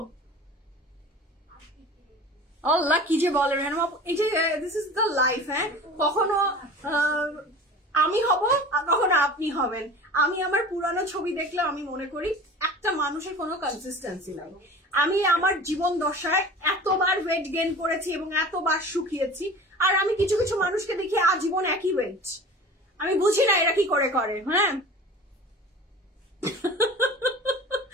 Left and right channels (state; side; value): normal; both; correlation 0.38